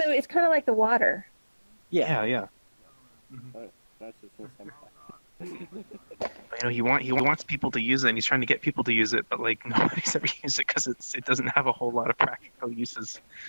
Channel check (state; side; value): inverted; both; correlation -1.00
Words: it's kind of like the water. Yeah, yeah. You know, he wants people to use it, and he's trying to get people to use it, but like nobody's ever used it because it doesn't have a whole lot of practical uses.